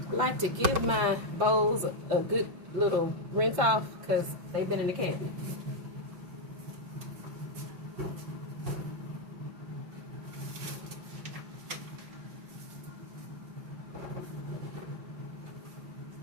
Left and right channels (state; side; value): late; left; 5.8 ms